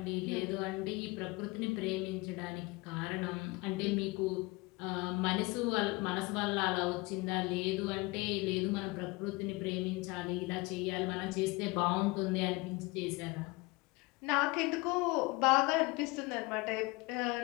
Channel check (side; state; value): right; quieter; 24.6 dB